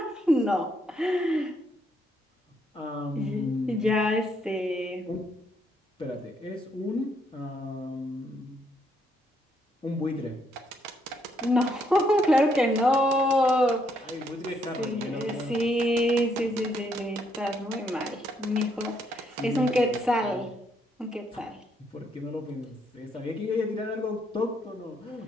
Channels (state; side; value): normal; both; correlation 0.73